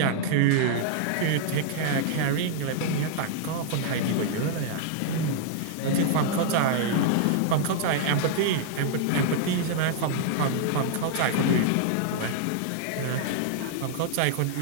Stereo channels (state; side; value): different; both; correlation -0.01